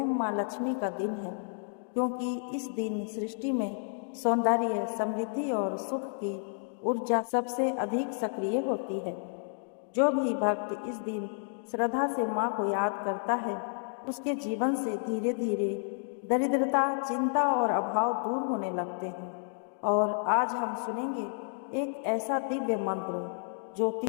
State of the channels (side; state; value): right; silent; digital silence